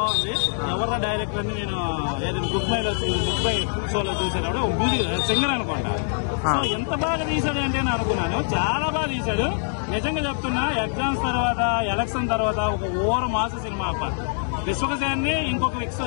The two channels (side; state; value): right; silent; 63 dB below the other